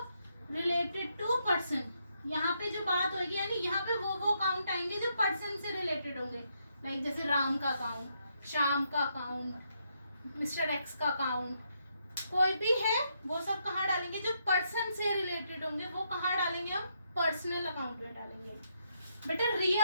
रिलेटेड टू पर्सन। यहाँ पे जो बात होगी यानी यहाँ पे वो अकाउंट आएंगे जो पर्सन से रिलेटेड होंगे। लाइक जैसे राम का अकाउंट, श्याम का अकाउंट, मिस्टर एक्स का अकाउंट, कोई भी है वो सब कहाँ डालेंगे? जो पर्सन से रिलेटेड होंगे वो कहाँ डालेंगे? हम पर्सनल अकाउंट में डालेंगे। बेटा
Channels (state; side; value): inverted; both; correlation -0.77